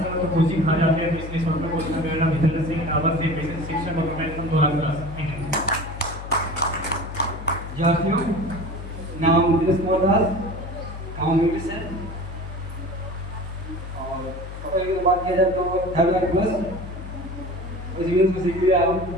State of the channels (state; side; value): noise; left; hum, 10 dB below the sound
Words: तो कोचिंग खा जाते हैं, तो इसलिए छोटा कोचिंग का मेरा विद्यालय से आवाज से बेसिक शिक्षक और मैं एकदम 2 लाख क्लास। Thank you. विद्यार्थियों, नाम दिनेश कुमार दास, गाँव मिट्टी से। और टोटल की बात किया जाए तो 3 लाख प्लस उस बिजनेस को सीख लिया हूँ।